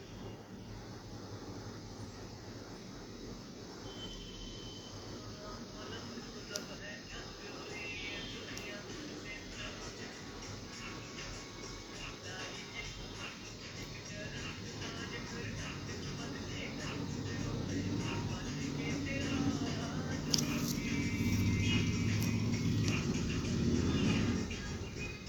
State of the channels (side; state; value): both; identical; correlation 1.00